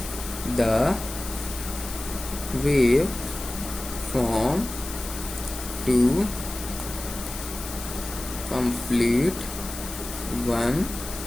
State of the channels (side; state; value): left; noise; hiss, 10 dB below the sound